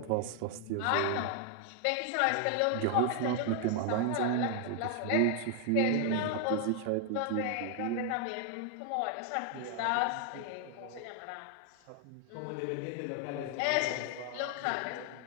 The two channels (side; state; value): both; different; correlation 0.00